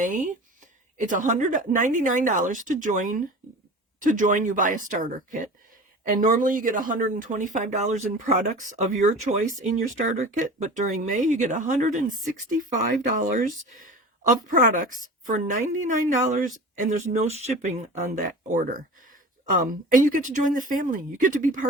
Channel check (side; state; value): both; normal; correlation 0.36